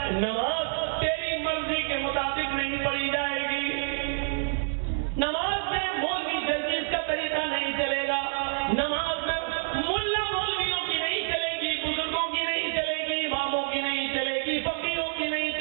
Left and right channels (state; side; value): silent; left; digital silence